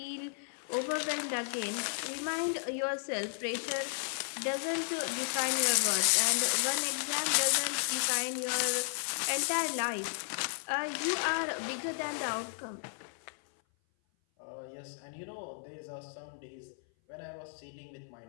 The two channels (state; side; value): silent; right; 55 dB below the other